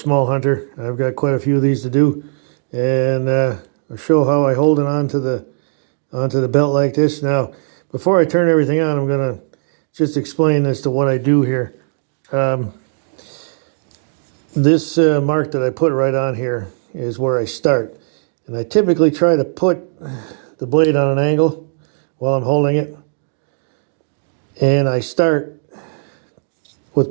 hunter. I've got quite a few of these to do, and I'll show how I hold it onto the belt like this. Now, before I turn everything on, I'm going to just explain as to what I do here. This mark that I put right on here is where I start, and I typically try to put the blade on an angle while I'm holding it. And I start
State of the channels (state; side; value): silent; left; digital silence